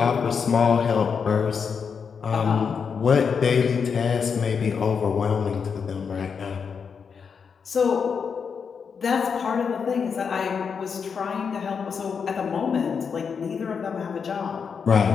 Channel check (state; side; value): quieter; right; 6.2 dB